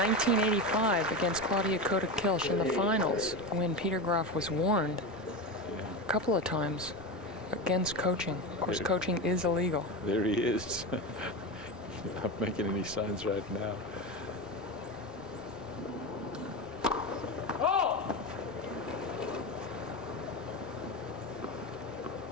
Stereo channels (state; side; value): normal; both; correlation 0.21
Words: against Claudia Kota-Kilsch in the finals when Peter Graf was warned a couple of times against coaching. Of course, coaching is illegal. There he is. Not making any signs right now.